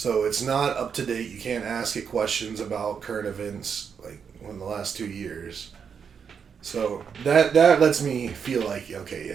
it's not up to date. You can't ask it questions about current events like in the last 2 years. So that lets me feel like, okay,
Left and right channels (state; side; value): quieter; left; 6.8 dB